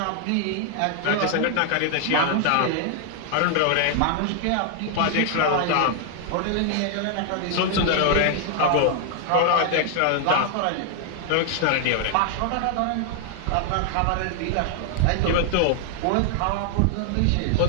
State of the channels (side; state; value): both; different; correlation 0.00